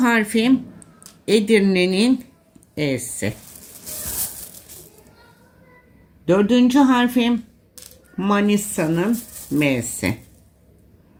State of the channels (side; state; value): both; identical; correlation 1.00